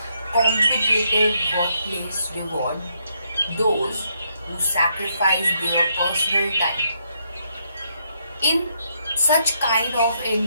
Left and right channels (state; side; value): inverted; both; correlation -0.76